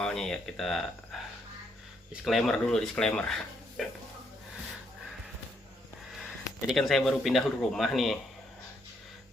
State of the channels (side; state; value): both; normal; correlation 0.74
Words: ya kita disclaimer dulu. Jadi kan saya baru pindah rumah nih.